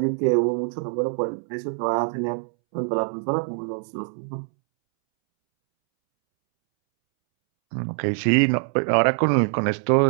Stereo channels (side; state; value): left; silent; 63 dB below the other